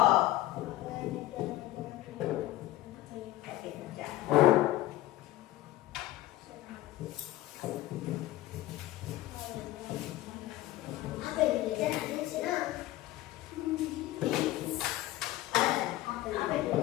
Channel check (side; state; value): right; quieter; 15.9 dB